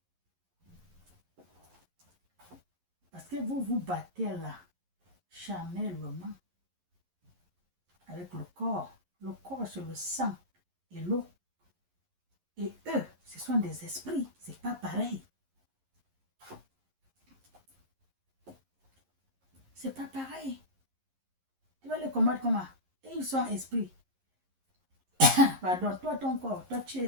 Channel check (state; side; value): late; left; 11 ms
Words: Parce que vous vous battez là, charnellement, avec le corps. Le corps, c'est le sang et l'eau. Et eux, ce sont des esprits. C'est pas pareil. C'est pas pareil. Tu vas les combattre comment? Et ils sont esprits. Pardon, toi, ton corps, toi, tu